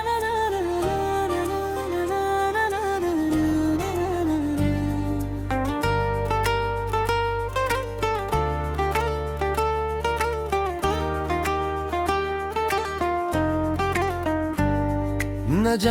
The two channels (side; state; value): both; identical; correlation 1.00